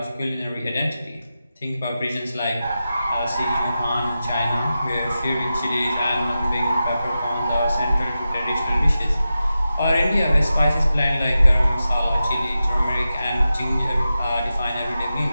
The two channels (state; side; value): inverted; both; correlation -0.92